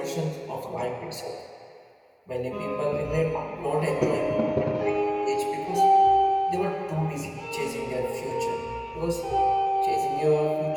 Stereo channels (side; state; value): both; identical; correlation 1.00